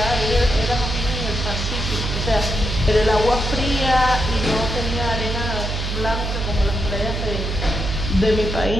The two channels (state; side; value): noise; right; hum, 3 dB below the sound